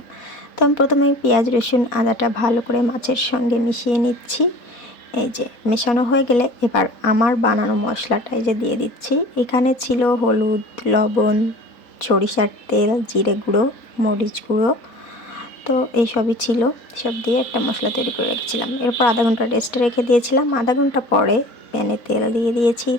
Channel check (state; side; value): late; right; 4.2 ms